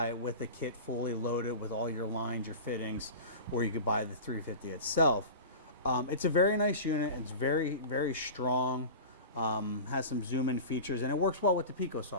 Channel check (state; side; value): inverted; both; correlation -0.32